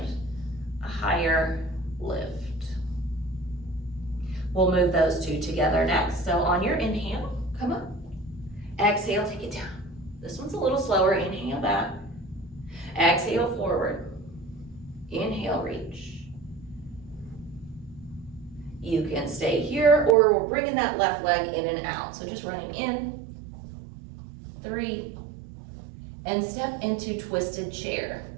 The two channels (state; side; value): drops out; left; at 20.2 s